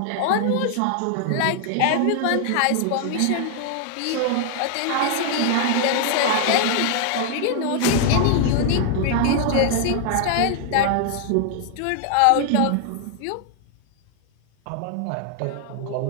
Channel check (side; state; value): both; different; correlation 0.00